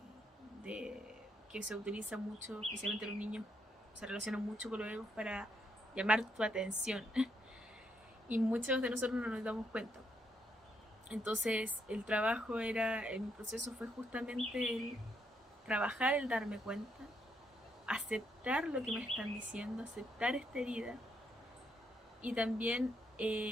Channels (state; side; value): normal; both; correlation 0.76